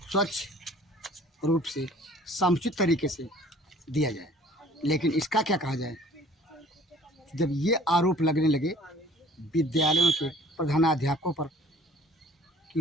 रूप से समुचित तरीके से दिया जाए। लेकिन इसका क्या कहा जाए, जब ये आरोप लगने लगे विद्यालयों के प्रधानाध्यापकों पर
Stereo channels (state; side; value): normal; both; correlation 0.52